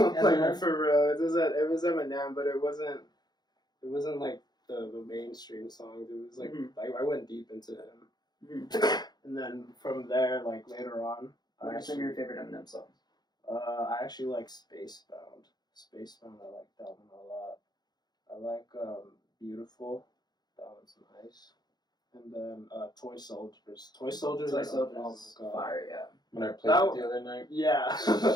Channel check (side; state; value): right; late; 0.20 ms